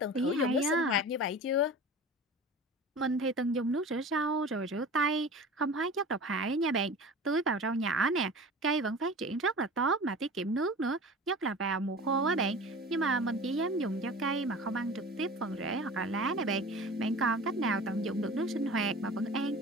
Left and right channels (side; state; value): both; normal; correlation 0.37